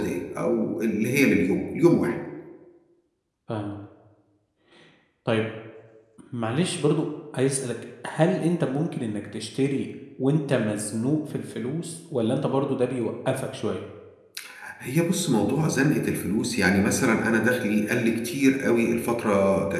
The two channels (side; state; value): both; identical; correlation 1.00